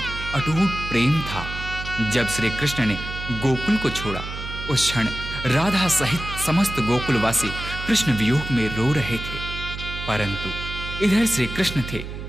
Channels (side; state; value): right; noise; hum, 8 dB below the sound